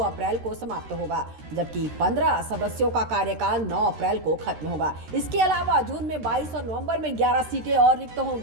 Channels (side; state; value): left; late; 13 ms